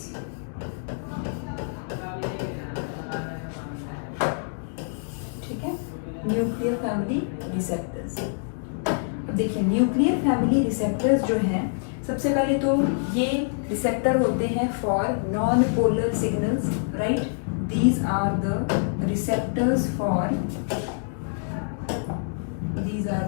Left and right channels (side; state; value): right; silent; digital silence